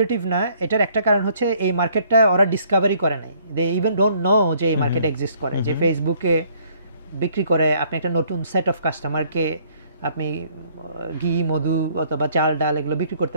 না। এটার একটা কারণ হচ্ছে এই মার্কেটটা ওরা ডিসকভারি করে নাই, দে ইভেন ডোন্ট নো যে এই মার্কেট এক্সিস্ট করে, যে ফেসবুকে বিক্রি করে আপনি একটা নতুন সেট অফ কাস্টমারকে আপনি ঘি, মধু অথবা চাল, ডাল এগুলো বিক্রি করতে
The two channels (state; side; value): inverted; both; correlation -0.63